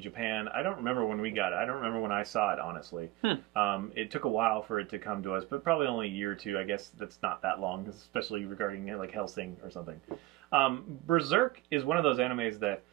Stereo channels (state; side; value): quieter; left; 17.8 dB